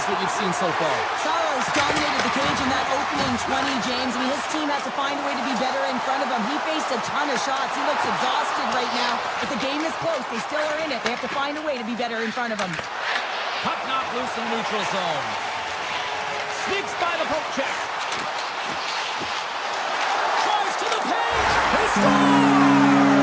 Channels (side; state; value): both; identical; correlation 1.00